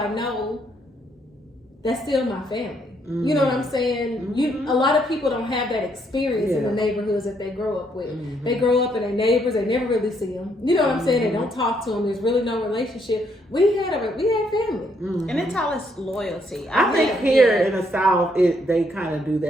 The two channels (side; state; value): both; normal; correlation 0.72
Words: know, that's still my family. You know what I'm saying? A lot of people don't have that experience in the neighborhoods that they grow up with. They grow up and their neighbors, they never really see them. You know what I'm saying? They don't talk to them. There's really no relationship. We had family, and it's all this loyalty. I think here in the South, they kind of do